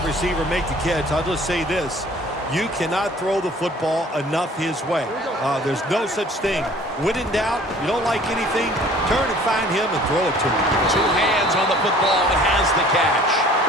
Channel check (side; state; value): both; normal; correlation 0.51